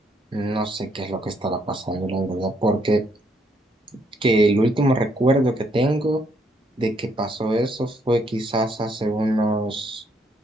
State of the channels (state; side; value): normal; both; correlation 0.71